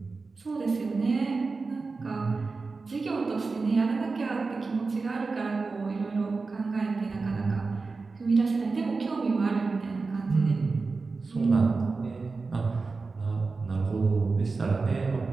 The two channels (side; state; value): left; quieter; 4.1 dB